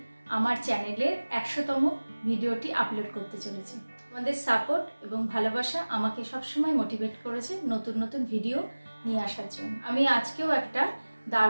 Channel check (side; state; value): both; inverted; correlation -1.00